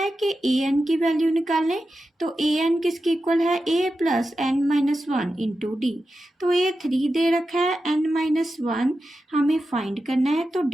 कि AN की वैल्यू निकालें, तो AN किसके इक्वल है, A plus n minus 1 into D. तो A 3 दे रखा है, n माइनस 1 हमें फाइंड करना है, तो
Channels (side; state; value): both; normal; correlation 0.91